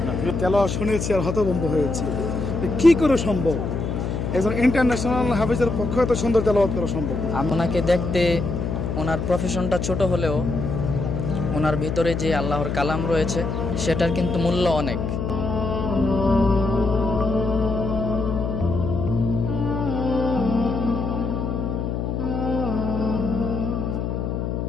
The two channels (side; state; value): left; noise; hum, 2 dB below the sound